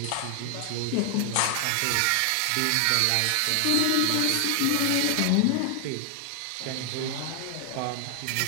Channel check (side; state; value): both; different; correlation 0.00